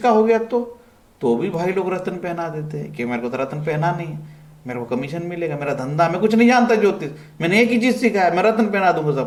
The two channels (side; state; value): both; identical; correlation 1.00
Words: हो गया तो भी भाई लोग रत्न पहना देते हैं कि मेरे को तो रत्न पहना नहीं है, मेरे को कमीशन मिलेगा, मेरा धंधा, मैं कुछ नहीं जानता ज्योतिष, मैंने एक ही चीज सीखा है, मैं रत्न पहना दूंगा